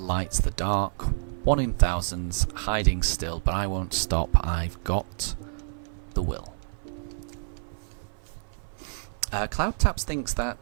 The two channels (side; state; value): left; silent; 56 dB below the other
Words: the dark, 1 in thousands, hiding still, but I won't stop, I've got the will. Cloud Taps thinks